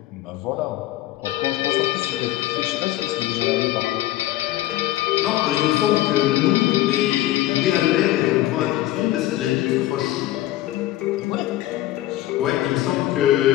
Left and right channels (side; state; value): right; quieter; 14.9 dB